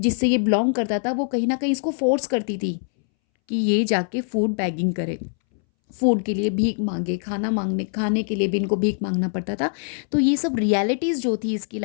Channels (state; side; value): silent; right; 63 dB below the other